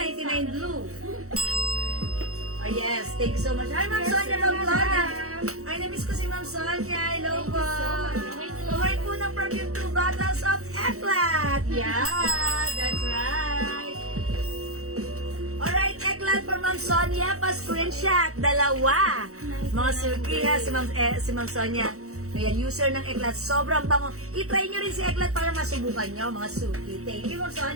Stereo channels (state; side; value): late; left; 0.64 ms